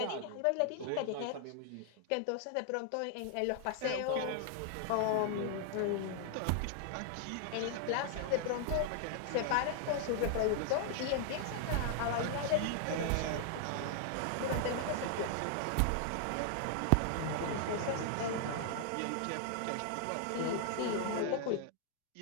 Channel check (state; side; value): different; both; correlation 0.00